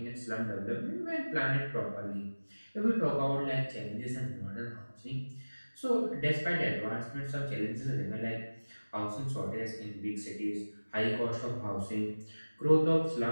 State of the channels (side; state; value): both; inverted; correlation -1.00